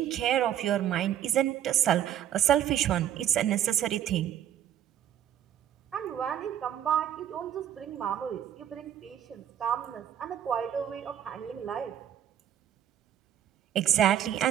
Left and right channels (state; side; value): quieter; left; 10.6 dB